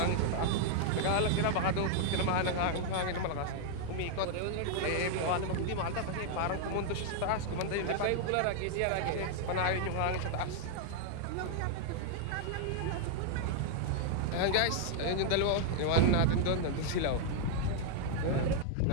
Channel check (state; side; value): different; both; correlation 0.00